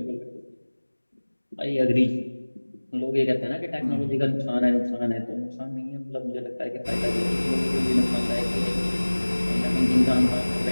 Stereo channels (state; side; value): inverted; both; correlation -1.00